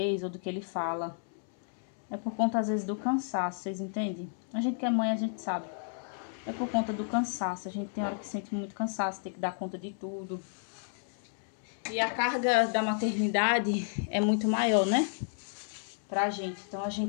ou do que ele fala. É por conta, às vezes, do cansaço, vocês entendem? A gente que é mãe, a gente sabe. É por conta do cansaço. A gente tem hora que sente muito cansaço, tem que dar conta de tudo. E a carga da maternidade é muito maior, né? Pra gente. Então, a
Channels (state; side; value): silent; right; 57 dB below the other